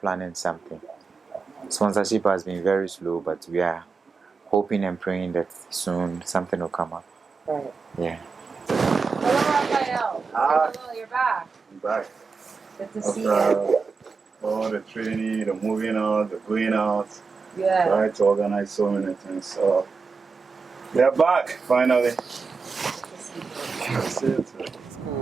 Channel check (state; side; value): quieter; left; 4.8 dB